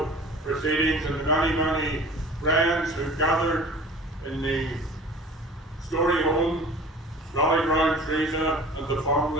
proceedings, and the many friends who gathered in the Story home, rallied round Teresa and the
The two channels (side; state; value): both; normal; correlation 0.43